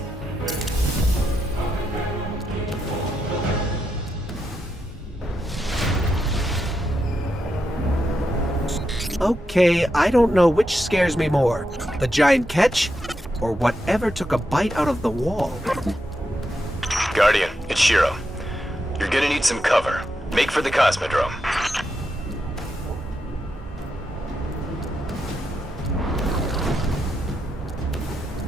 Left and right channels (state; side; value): normal; both; correlation 0.84